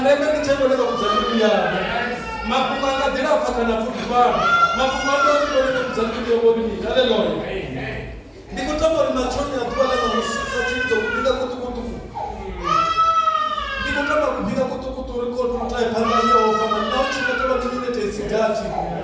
nizvebone bakudzamiru ya. Mapungo akadira fakana fudiwa. Mapungo akadira kudzamiru ya wodi. Haleluya. Nikotamori machoni atwala na musisa chizo kupiga kutukutu. Nikotama kupiga kutukutu record mtai panda yo kama nauchi kataba nyingine tesigati.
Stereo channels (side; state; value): both; identical; correlation 1.00